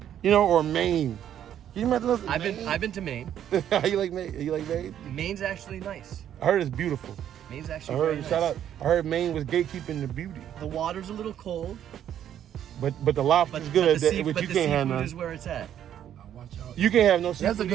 You know, or Maine. Can you imagine those? I've been to Maine. You like Maine? You like Maine? Maine's actually nice. I heard it's beautiful. Maine's I actually heard very shout nice. out. I heard Maine was gatekeeping the beauty. The water's a little cold, But the lobster's but good, the, sea, which but you the can't have seafood none. is where it's at. Watch out. You can't have no seafood. That's a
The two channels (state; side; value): quieter; left; 10.3 dB